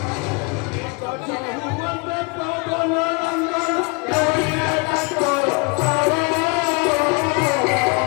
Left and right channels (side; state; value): right; quieter; 31.1 dB